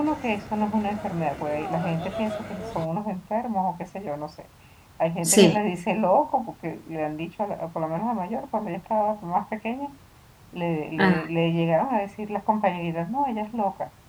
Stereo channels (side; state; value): both; identical; correlation 1.00